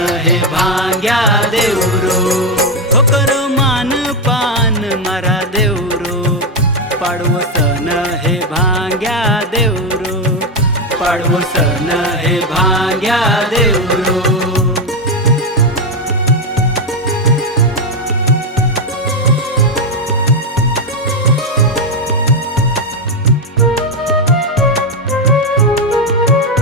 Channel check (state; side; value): normal; both; correlation 0.07